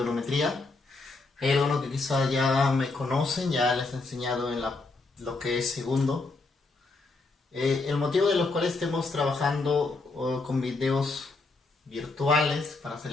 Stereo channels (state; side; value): quieter; right; 3.6 dB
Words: Hay algunos que quizás ya me conocen, ya les he enseñado en lo que es segundo. El motivo de los cuales estemos trabajando con videos virtuales para